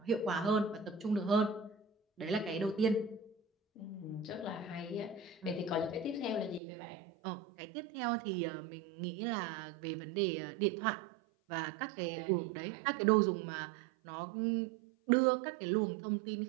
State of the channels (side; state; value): left; drops out; at 6.6 s